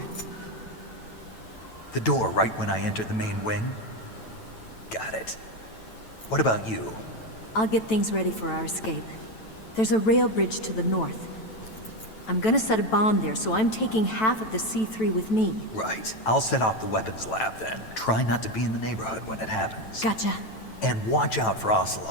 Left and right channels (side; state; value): right; late; 9.1 ms